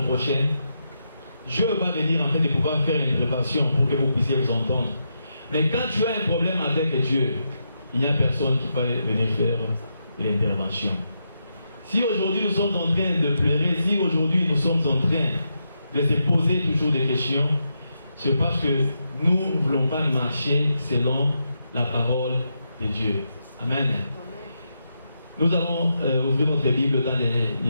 prochain, Dieu va venir en fait de pouvoir faire une intervention pour que vous puissiez vous entendre. Mais quand tu as un problème avec Dieu, il n'y a personne qui va venir faire l'intervention. Si aujourd'hui nous sommes en train de pleurer, si aujourd'hui nous sommes en train de se poser toujours des questions, c'est parce que nous ne voulons pas marcher selon la parole de Dieu. Amen. Nous allons ouvrir notre Bible dans les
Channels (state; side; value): inverted; both; correlation -0.84